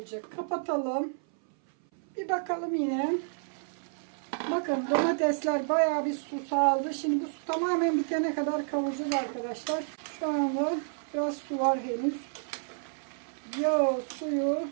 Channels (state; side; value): silent; left; 58 dB below the other